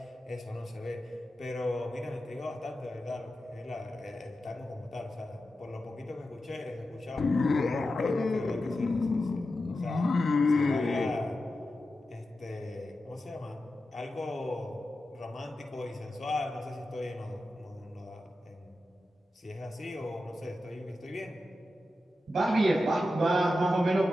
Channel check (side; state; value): both; normal; correlation 0.91